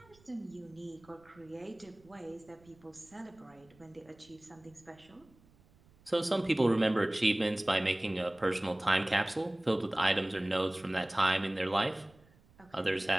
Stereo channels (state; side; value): noise; right; rumble, 29 dB below the sound